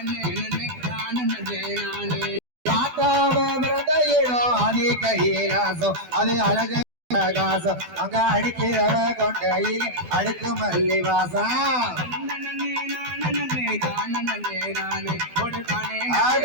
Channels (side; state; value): left; late; 12 ms